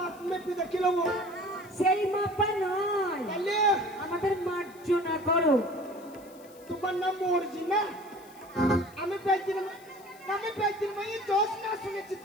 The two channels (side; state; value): left; noise; hiss, 25 dB below the sound